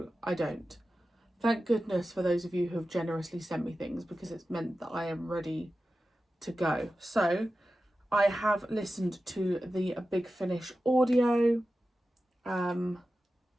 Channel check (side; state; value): both; normal; correlation 0.93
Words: I don't. Thank goodness for those of you who have generously sent me things because it's meant that I am ready to go. So, I have listened to the Big Finish audio.